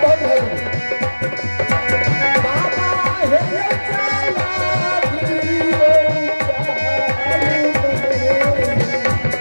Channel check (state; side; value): inverted; both; correlation -1.00